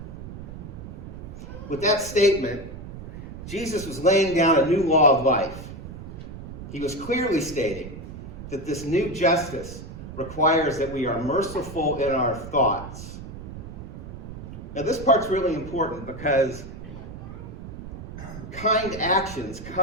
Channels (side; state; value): right; noise; rumble, 11 dB below the sound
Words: With that statement, Jesus was laying down a new law of life. He was clearly stating that this new justice requires that we are merciful in our thoughts. Now, this part's really important because kind actions